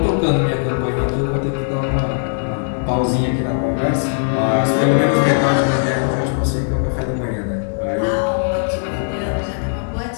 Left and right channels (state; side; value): silent; right; digital silence